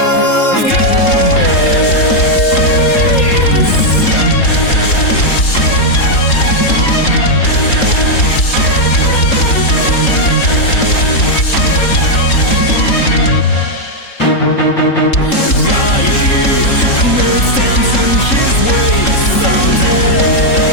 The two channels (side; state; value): right; late; 3.7 ms